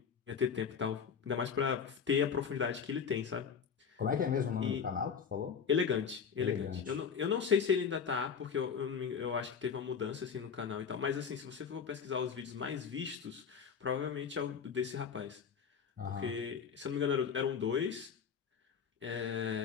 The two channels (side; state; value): right; quieter; 6.8 dB